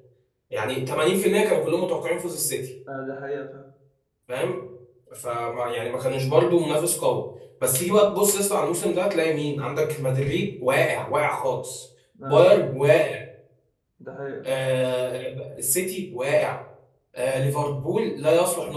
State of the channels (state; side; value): identical; both; correlation 1.00